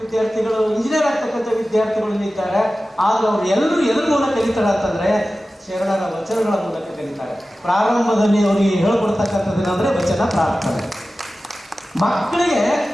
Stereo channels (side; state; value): both; normal; correlation 0.95